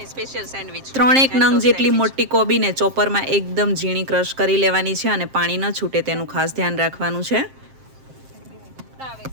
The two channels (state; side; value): late; left; 7.6 ms